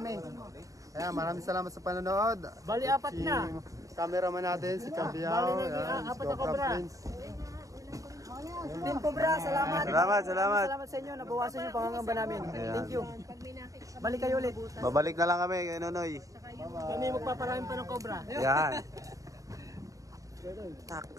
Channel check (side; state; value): left; late; 0.16 ms